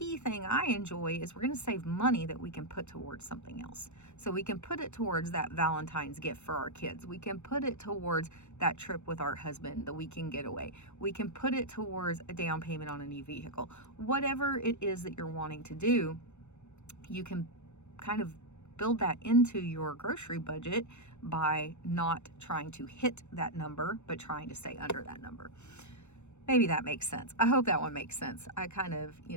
thing I enjoy is we're going to save money that we can put towards something else. So we can put it towards that Valentine's gift for our kids. We can put it towards that trip with our husband, the weekend getaway. We can put it towards a down payment on a new vehicle. Whatever it is that you're wanting to do, you can kind of build that into your grocery budget by not trying to hit that number, but trying to stay under that number. Maybe that makes sense. I hope that one makes sense. I kind of,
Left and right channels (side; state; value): right; late; 0.82 ms